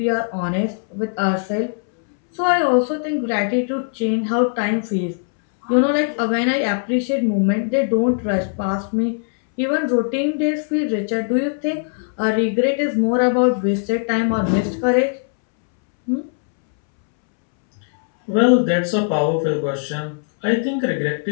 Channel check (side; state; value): right; silent; 66 dB below the other